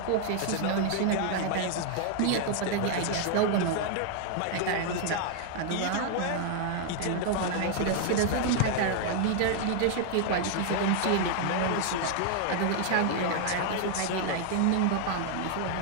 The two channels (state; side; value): different; both; correlation 0.00